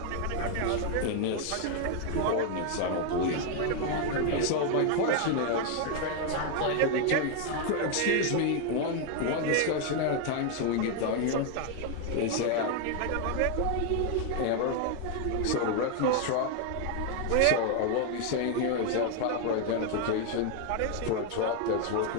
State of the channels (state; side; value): different; both; correlation 0.01